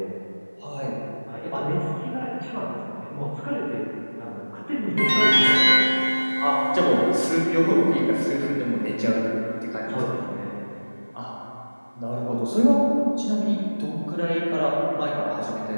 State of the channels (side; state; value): both; inverted; correlation -1.00